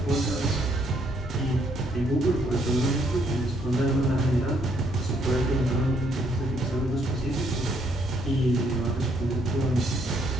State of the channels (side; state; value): both; normal; correlation 0.70